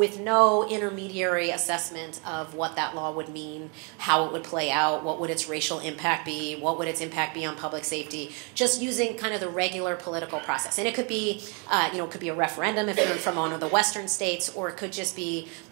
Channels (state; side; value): quieter; left; 34.8 dB